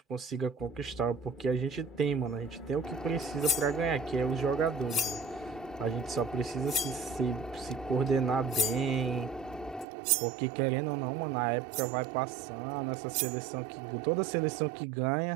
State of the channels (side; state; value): left; drops out; at 9.9 s